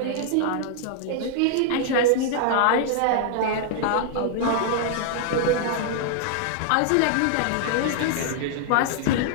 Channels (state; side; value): different; both; correlation -0.01